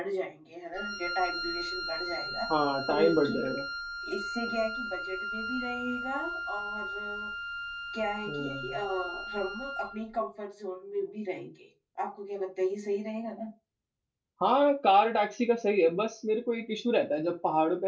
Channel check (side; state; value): both; identical; correlation 1.00